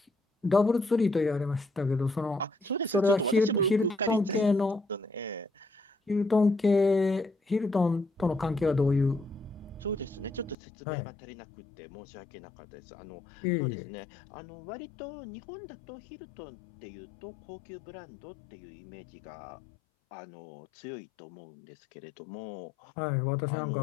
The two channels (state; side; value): drops out; right; at 10.6 s